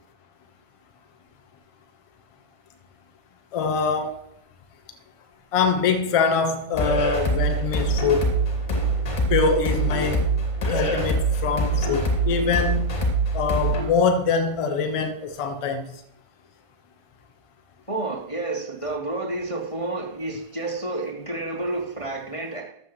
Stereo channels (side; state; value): right; late; 1.5 ms